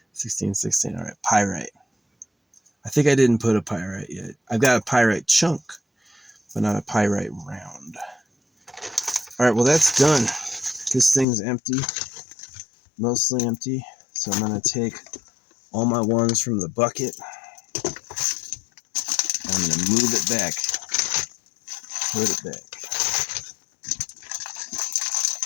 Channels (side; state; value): right; drops out; at 11.2 s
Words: 16, 16. All right, pyrite. I think I didn't put a pyrite yet. I've got a pyrite chunk, but not a pyrite round. All right, well, that's done. This thing's empty, mostly empty. So I'm going to take all my ones from the bucket, and I'm going to move it back, put it back.